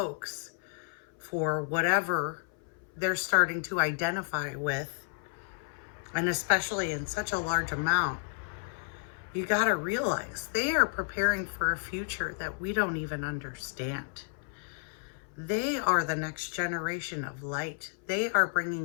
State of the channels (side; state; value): right; silent; 57 dB below the other